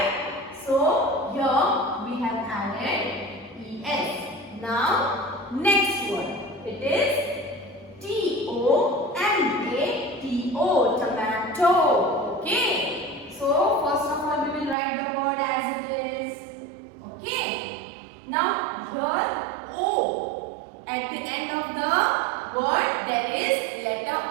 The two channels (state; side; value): drops out; left; at 14.8 s